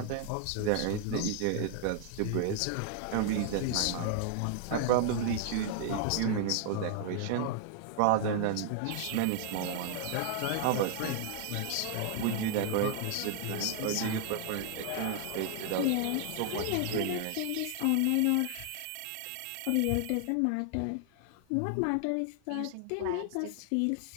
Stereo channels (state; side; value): different; both; correlation 0.00